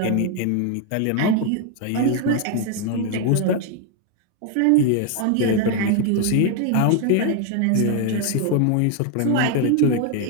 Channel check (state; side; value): different; both; correlation 0.01